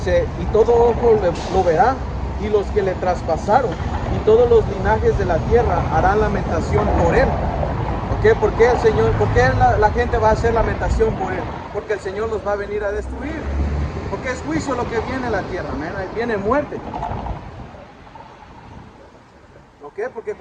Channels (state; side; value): identical; both; correlation 1.00